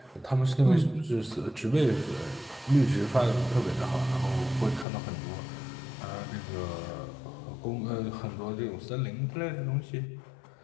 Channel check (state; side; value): drops out; right; at 4.9 s